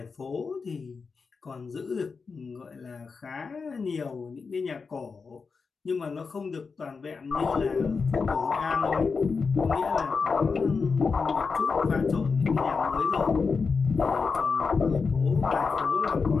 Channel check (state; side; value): quieter; right; 5.0 dB